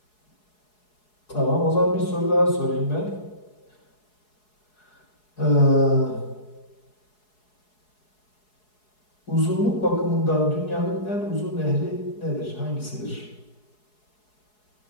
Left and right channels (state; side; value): late; right; 4.7 ms